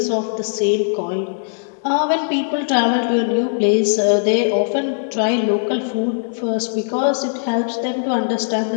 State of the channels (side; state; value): right; silent; digital silence